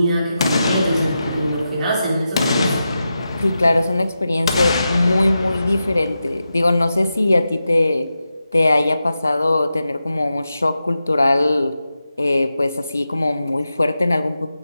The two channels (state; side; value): inverted; both; correlation -0.90